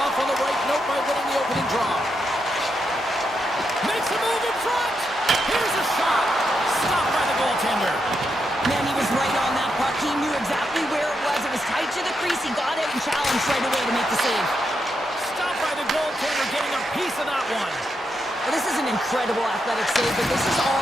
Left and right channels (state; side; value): noise; right; hum, 28 dB below the sound